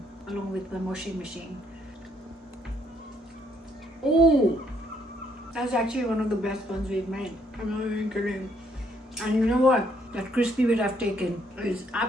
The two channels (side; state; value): both; normal; correlation 0.69